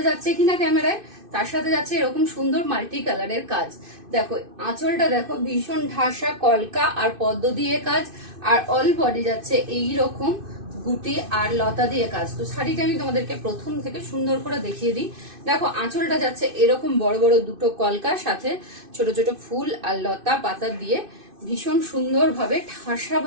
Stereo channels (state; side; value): late; left; 2.6 ms